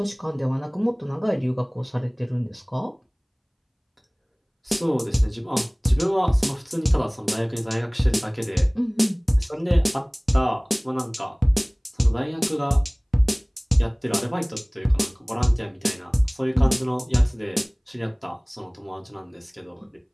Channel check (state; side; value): identical; both; correlation 1.00